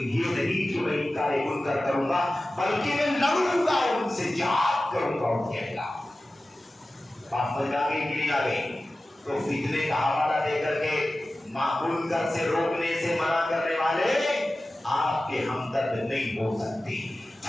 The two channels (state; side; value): normal; both; correlation 0.95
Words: نہیں کہ میں انکار منکر کروں گا بلکہ میں لڑوں گا ان سے، جہاد کروں گا ان کے خلاف۔ بات سمجھ آ گئی کہ نہیں آ گئی؟ تو فتنے کا حوالہ دے کر کے منکر سے روکنے سے منع کرنے والے آپ کے ہمدرد نہیں ہو سکتے۔